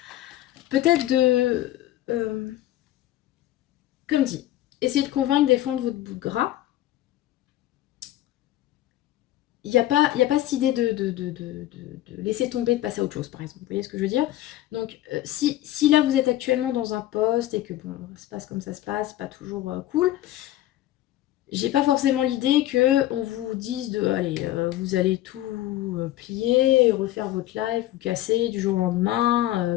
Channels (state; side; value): quieter; right; 14.3 dB